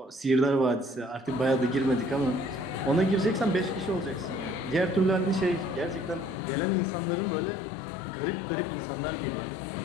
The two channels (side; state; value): right; drops out; at 6.4 s